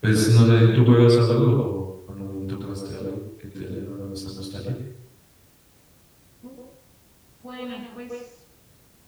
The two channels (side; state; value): both; identical; correlation 1.00